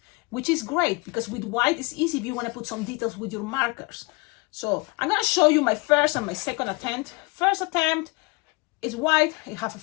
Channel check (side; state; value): right; quieter; 27.0 dB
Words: which is great because with white it's easy if you want to put some details with your markers. So I'm gonna show you my first and my second attempt. First attempt is white, it has a